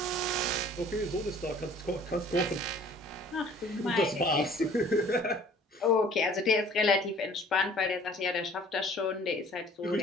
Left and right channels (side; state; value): both; normal; correlation 0.52